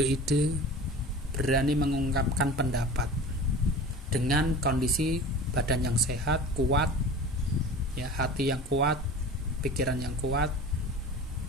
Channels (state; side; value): normal; both; correlation 0.37